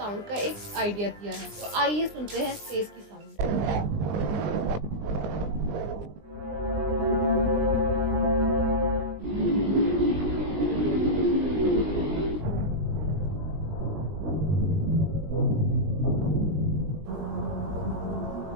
का एक आइडिया दिया है। तो आइए सुनते हैं स्पेस की साउंड।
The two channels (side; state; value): left; late; 20 ms